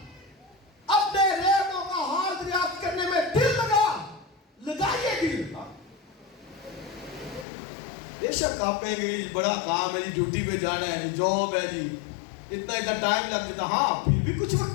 अपने रेवड़ों का हाथ दरियाफ्त करने में दिल लगाइए दिल। बेशक आप कहेंगे बड़ा काम है जी, ड्यूटी पे जाना है जी, जॉब है जी, इतना टाइम लग जाता। हाँ, फिर भी कुछ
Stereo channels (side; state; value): right; drops out; at 7.5 s